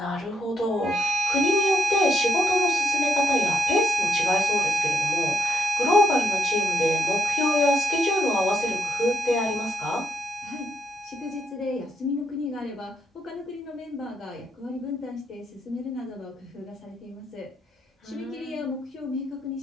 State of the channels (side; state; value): both; normal; correlation 0.80